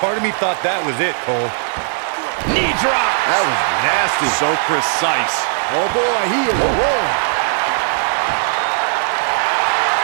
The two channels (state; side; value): silent; left; 68 dB below the other